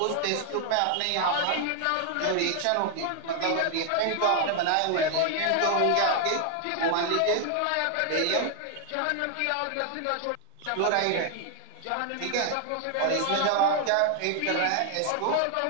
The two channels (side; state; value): both; different; correlation 0.00